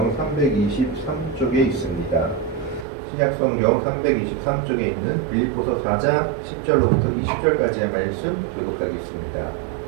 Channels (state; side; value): drops out; left; at 2.9 s